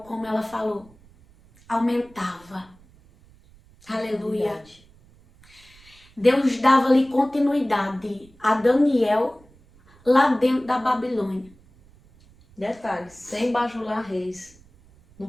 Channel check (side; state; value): right; noise; rumble, 27 dB below the sound